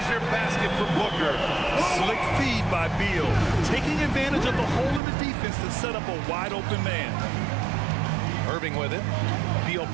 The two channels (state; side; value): drops out; left; at 5.0 s